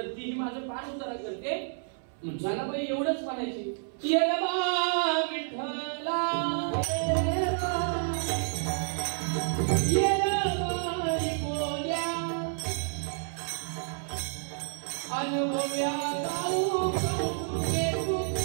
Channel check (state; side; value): silent; left; 58 dB below the other